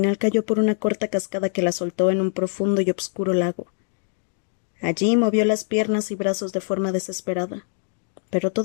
cayó por una corta cascada que la soltó en un profundo y obscuro lago. Allí movió las piernas y brazos de forma desesperada, pero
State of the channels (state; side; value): silent; right; 63 dB below the other